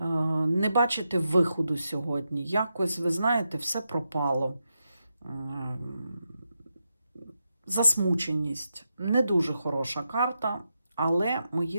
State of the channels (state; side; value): inverted; both; correlation -0.86